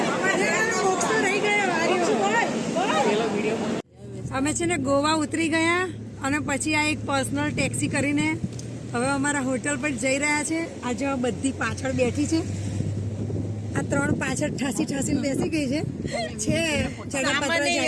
મોક્ષો રહી ગયા। અમે છે ને ગોવા ઉતરી ગયા અને પછી આ એક પર્સનલ ટેક્સી કરીને હવે અમારા હોટલ પર જઈ રહ્યા છે। આજે બધી પાછળ બેઠી છે, આ 3 પાછળ ઠાસીને બેસી ગઈ છે।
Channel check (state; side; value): identical; both; correlation 1.00